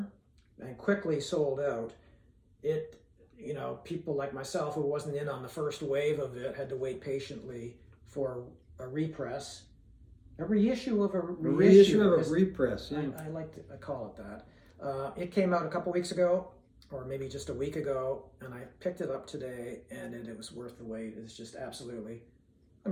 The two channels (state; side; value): identical; both; correlation 1.00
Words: and quickly sold out. It, people like myself who wasn't in on the first wave of it had to wait patiently for a repress. A reissue of a reissue. A reissue of a repress, yeah. I call it that. It came out a couple weeks ago, or maybe just a week ago, and I picked it up today, and it was worth the wait. It's just absolutely,